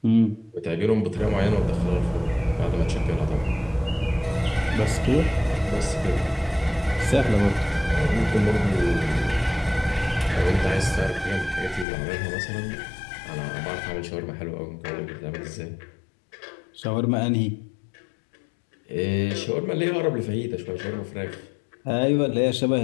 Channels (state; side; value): drops out; right; at 11.9 s